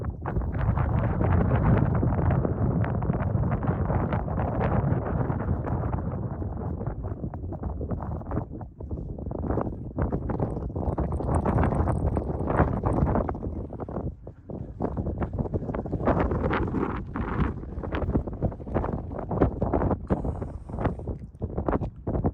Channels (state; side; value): identical; both; correlation 1.00